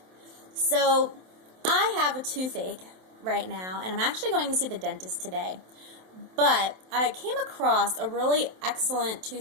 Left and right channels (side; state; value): left; late; 27 ms